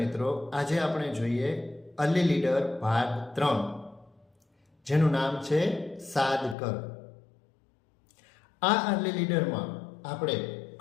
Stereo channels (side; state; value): right; drops out; at 6.6 s